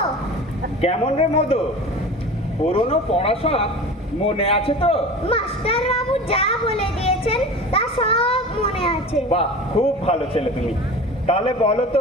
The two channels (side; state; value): both; normal; correlation 0.35